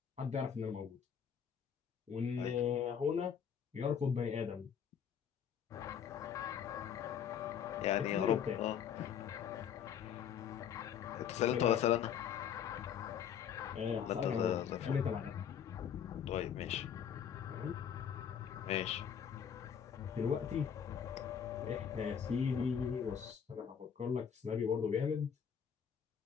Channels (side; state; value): right; quieter; 8.1 dB